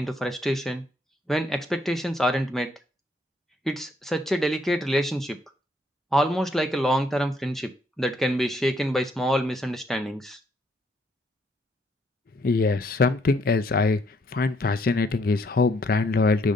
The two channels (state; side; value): normal; both; correlation 0.69